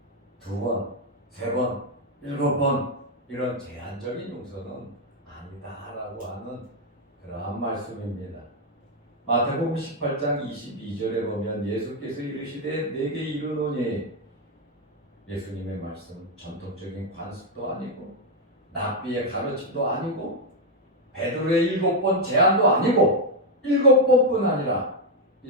2번, 3번, 7번 이런 제한적인 용서는 아니다라고 하는 그러한 말씀입니다. 마태복음 18장 22절에 보면 예수께서 이르시되 내게 이르노니 예수님의 말씀 전통적인 관습도 아니고 랍비의 가르침도 아니고 베드로의 7번 제한도 아니고 7번뿐 아니라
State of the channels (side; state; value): both; normal; correlation 0.03